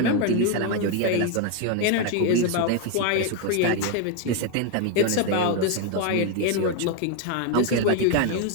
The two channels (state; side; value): different; both; correlation 0.01